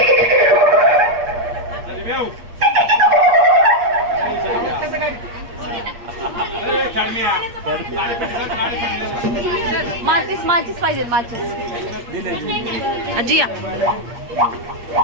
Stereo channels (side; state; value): left; late; 8.5 ms